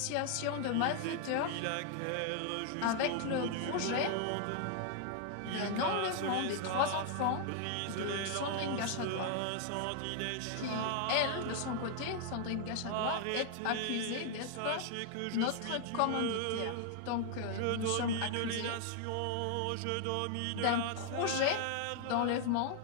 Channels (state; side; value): different; both; correlation 0.00